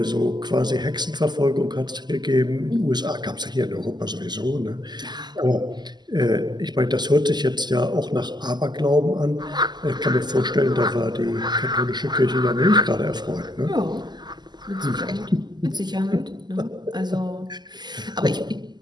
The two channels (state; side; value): late; left; 0.21 ms